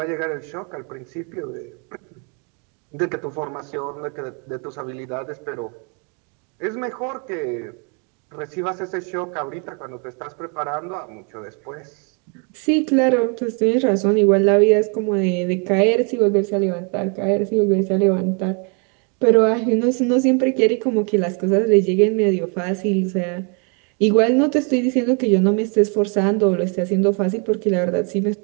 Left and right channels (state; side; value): quieter; left; 36.0 dB